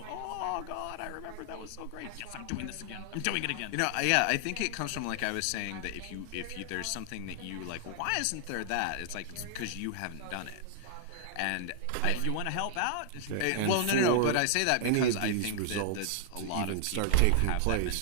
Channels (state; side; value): different; both; correlation 0.00